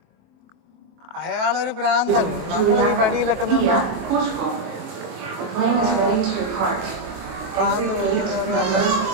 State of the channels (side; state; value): left; late; 23 ms